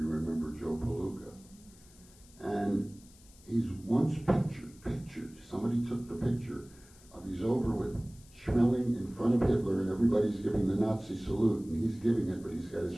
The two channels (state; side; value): noise; left; hiss, 25 dB below the sound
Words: remember Joe Palooka. And he's once pictured, somebody took the picture of he's over with Schmeling in front of Hitler and everybody's giving the Nazi salute and he's giving it, but he's got his